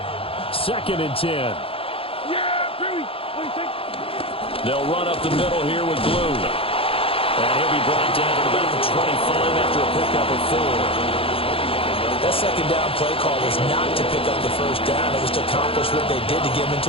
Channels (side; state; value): right; late; 0.27 ms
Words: 2nd and 10. Yeah, Billy. What do you think? They'll run up the middle here with Blue. And he'll be brought down to about the 25 after a pickup of 4. That 2nd down play call was not to pick up the 1st down. It was to accomplish what they did to get them